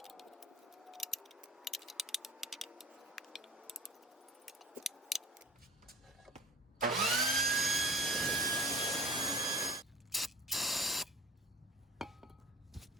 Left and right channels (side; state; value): both; normal; correlation 0.46